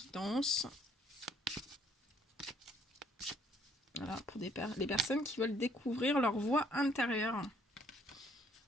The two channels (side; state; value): both; normal; correlation 0.64